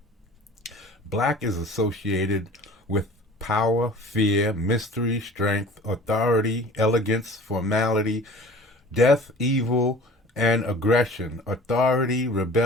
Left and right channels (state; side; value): normal; both; correlation 0.44